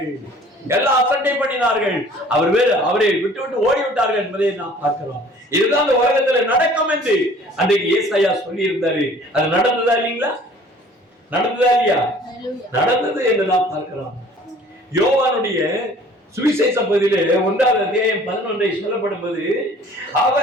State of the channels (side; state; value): both; normal; correlation 0.51